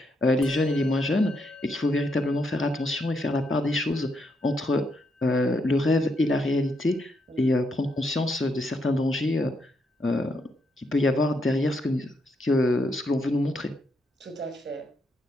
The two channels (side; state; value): both; normal; correlation 0.78